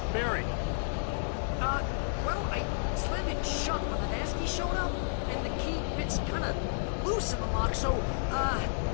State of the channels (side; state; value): right; silent; digital silence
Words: Barry. Well, I slammed it shut when the nasty showed up, and the key fits kind of loose in the lock, so, Barry!